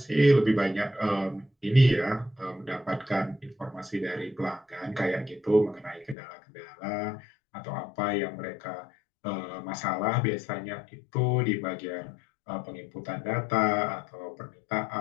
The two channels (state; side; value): drops out; right; at 6.2 s